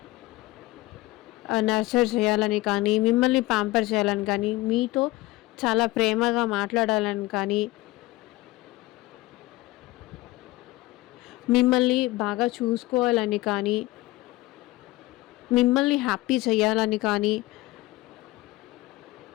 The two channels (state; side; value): quieter; right; 19.5 dB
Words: చేయాలని కానీ, మిమ్మల్ని ప్యాంపర్ చేయాలని కానీ, మీతో చాలా ప్రేమగా మాట్లాడాలని కానీ, మిమ్మల్ని బాగా చూసుకోవాలని కానీ, మిమ్మల్ని హ్యాపీ చేయాలని కానీ,